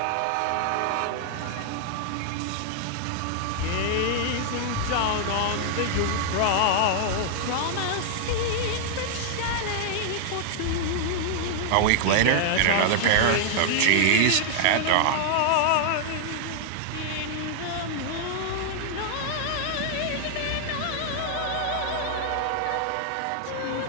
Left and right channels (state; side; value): different; both; correlation 0.00